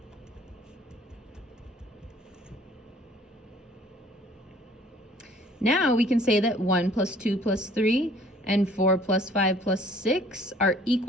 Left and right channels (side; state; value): both; normal; correlation 0.55